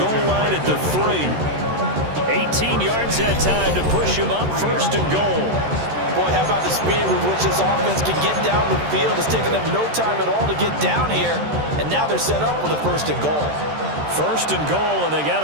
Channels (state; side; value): late; left; 13 ms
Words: line at the 3. 18 yards that time to push him up 1st and goal. Boy, how about the speed with which this offense can get down the field? It's taken them no time at all to get down here. And now they're set up with a 1st and goal. 1st and goal, and they got